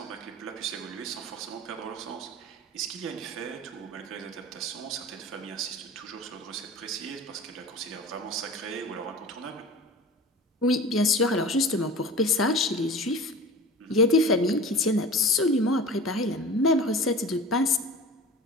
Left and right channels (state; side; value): normal; both; correlation 0.37